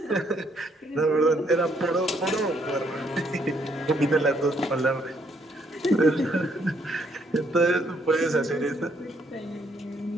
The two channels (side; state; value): both; normal; correlation 0.70